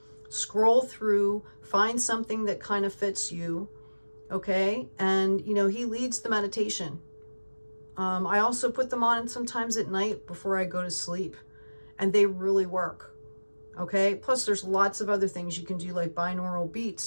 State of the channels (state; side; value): inverted; both; correlation -1.00